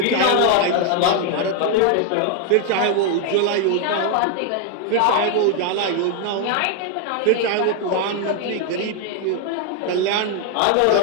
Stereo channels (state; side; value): different; both; correlation 0.00